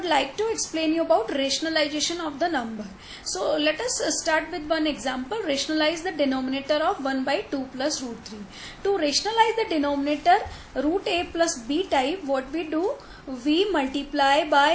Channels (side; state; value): both; identical; correlation 1.00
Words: like to explain you about rationalization of the number. So let us start with one example. Rationalize the denominator of 1 by 2 plus root 3. To rationalize the denominator root A plus B type, what we do, we multiply